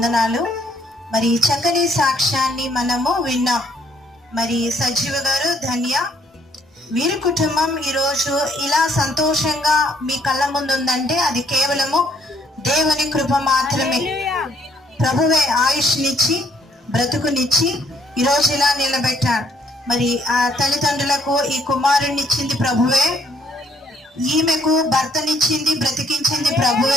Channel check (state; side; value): normal; both; correlation 0.67